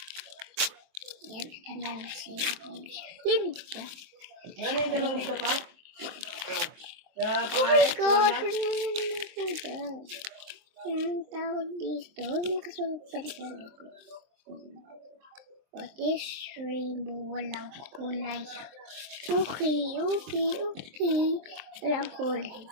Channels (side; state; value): left; late; 23 ms